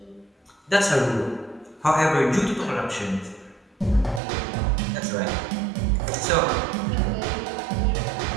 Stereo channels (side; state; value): left; drops out; at 4.2 s